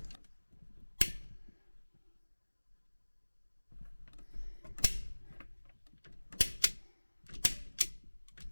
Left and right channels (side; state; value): both; inverted; correlation -1.00